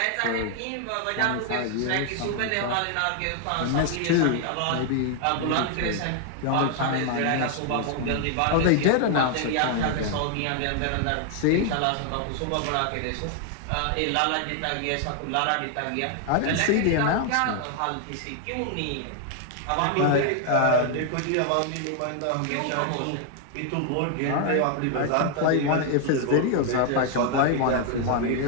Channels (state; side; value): different; both; correlation 0.00